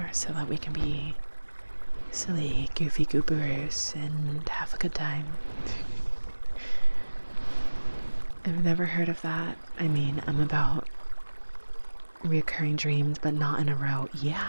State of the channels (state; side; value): inverted; both; correlation -1.00